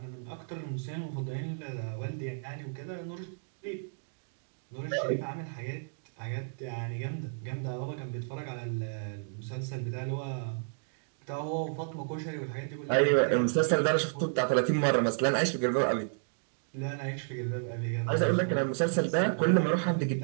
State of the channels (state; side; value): silent; left; digital silence